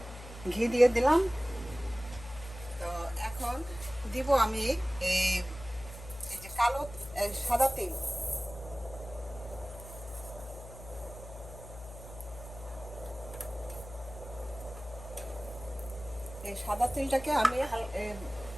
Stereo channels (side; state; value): left; noise; hum, 14 dB below the sound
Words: ঘি দিয়ে দিলাম। তো এখন দিব আমি এই যে কালো সাদা তেল। এই সাদা তেলটাকে আমি